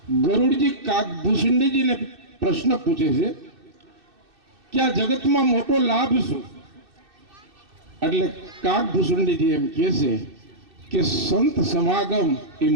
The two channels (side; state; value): left; late; 2.6 ms